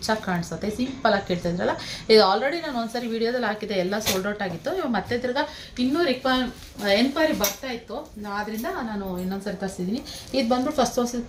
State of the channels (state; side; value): identical; both; correlation 1.00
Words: ಆಗಿ ಕಾಣಿಸುತ್ತೆ. ಸಿಂಪಲ್ ಆಗಿ ಕೇಳ್ತಿದ್ರಲ್ಲ, ಇದು ಆಲ್ರೆಡಿ ನಾನು ಒಂದ್ಸರಿ ವಿಡಿಯೋದಲ್ಲಿ ಹಾಕಿದ್ದೆ, ಎಲ್ಲ ಸೋಲ್ಡ್ ಔಟ್ ಆಗಿತ್ತು. ಇವಾಗ ಮತ್ತೆ ತಿರ್ಗಾ ಇನ್ನೂ ಎನ್ಕ್ವೈರಿ ಬರ್ತಾ ಇತ್ತು, ಆದ್ದರಿಂದ ನಾನು ಇನ್ನೊಂದ್ಸರಿ ತರಿಸಿದ್ದೀನಿ. ಇದು ಬಂದ್ಬಿಟ್ಟು ಫಸ್ಟ್ ತೋರಿಸಿದ